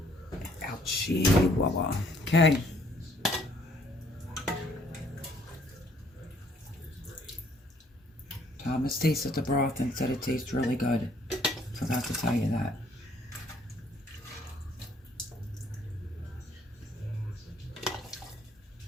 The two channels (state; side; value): normal; both; correlation 0.63